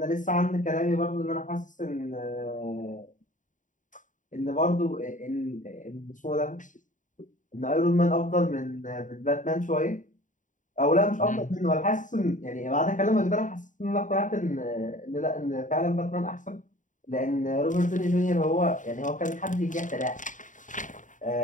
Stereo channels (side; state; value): right; late; 0.37 ms